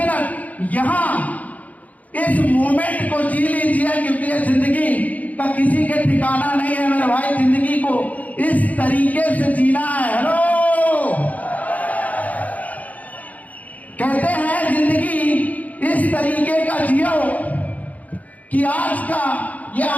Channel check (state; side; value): late; right; 0.075 ms